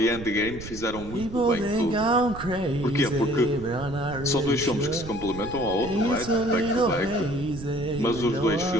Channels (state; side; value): noise; right; rumble, 12 dB below the sound